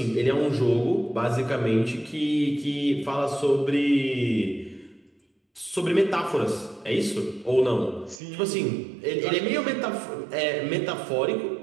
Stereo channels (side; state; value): left; drops out; at 8.2 s